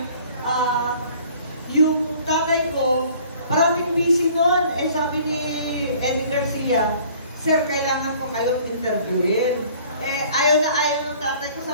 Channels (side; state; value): both; inverted; correlation -0.53